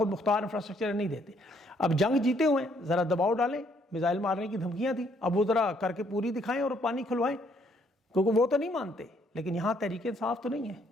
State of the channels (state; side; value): normal; both; correlation 0.68